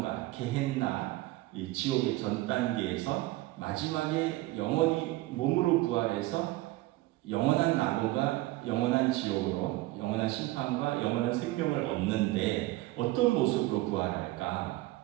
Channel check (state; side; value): quieter; left; 18.6 dB